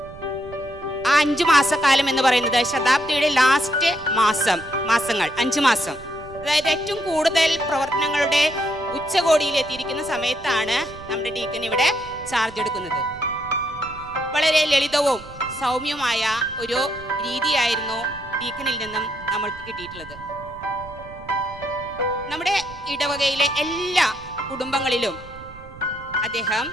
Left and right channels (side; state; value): right; noise; rumble, 18 dB below the sound